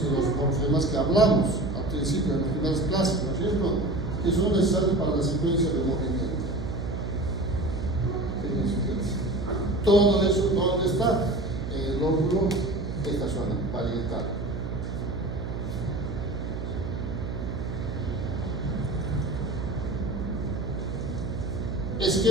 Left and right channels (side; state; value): right; noise; hum, 5 dB below the sound